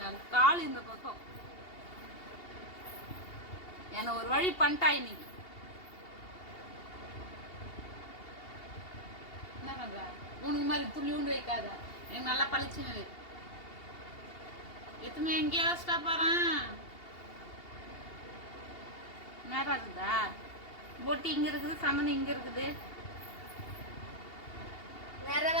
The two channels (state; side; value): late; right; 2.8 ms